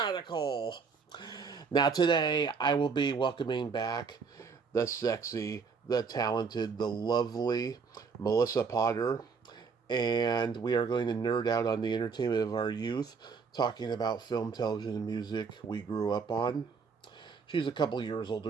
Now today I will be welcoming back the sexy, the talented, the lovely Melissa Potter, and we are going to nerd out on the entertainment of our youth, talking about film, television, and music we grew up on. She's a couple years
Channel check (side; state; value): left; quieter; 5.3 dB